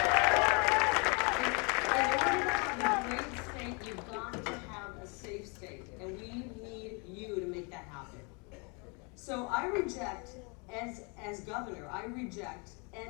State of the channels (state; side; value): quieter; right; 32.9 dB